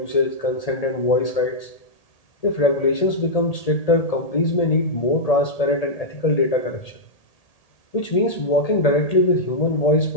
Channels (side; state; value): right; late; 1.8 ms